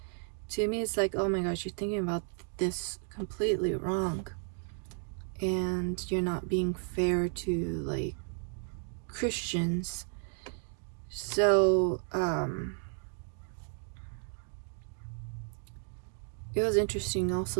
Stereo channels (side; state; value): left; silent; 56 dB below the other